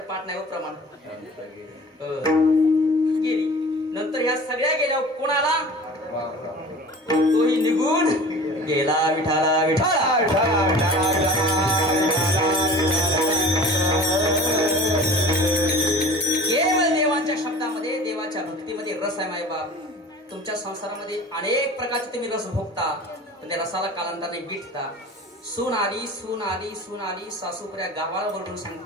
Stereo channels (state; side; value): normal; both; correlation 0.41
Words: पाठ नाही प्रमाण गेली नंतर ह्या सगळ्या गेल्या कोणाला तोही निघून गेला विठाला विठाला केवळ देवांच्या शब्दामध्ये देवाच्या भक्तीमध्ये रस आहे मायबाप. तुमच्या संसारामध्ये अनेक प्रकारचे तुम्ही रस भोगता पण त्या रसाला कालांतराने विटता. सून आली सून आली सून आली सासूपुऱ्या गावाला बोलून